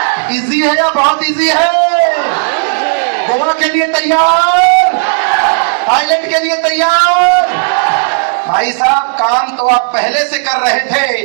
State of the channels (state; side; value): silent; left; digital silence